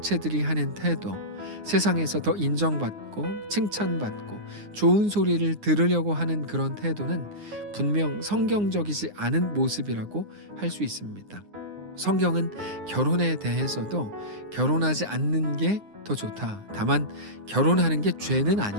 하는 태도, 세상에서 더 인정받고 칭찬받고 좋은 소리를 들으려고 하는 그런 태도는 분명 성경적이지 않은 모습이라고 할 수 있습니다. 성경은 결혼에 대해서도 결혼하지 않는 게 더 좋다. 다만 결혼하는 게 죄는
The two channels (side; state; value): left; late; 9.7 ms